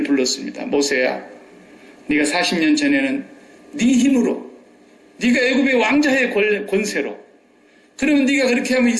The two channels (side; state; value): both; identical; correlation 1.00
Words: 불렀습니다. 모세야, 네가 40년 전에는 네 힘으로, 네가 애굽의 왕자의 권세로, 그러면 네가 그렇게 하면